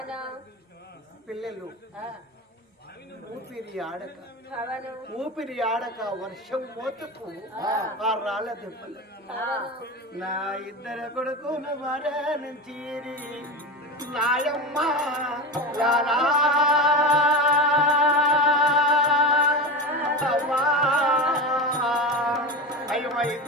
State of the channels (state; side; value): normal; both; correlation 0.23